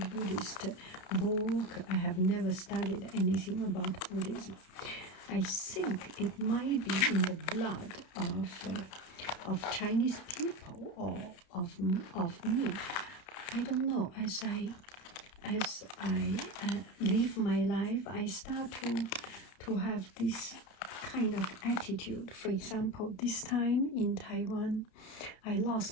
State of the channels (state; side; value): late; right; 31 ms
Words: book. I have never studied anything about Buddhism. I think it might be in the blood of Chinese people or of me. I don't know. As I live my life, I start to have this kind of attitude. For example, this time in Taiwan, I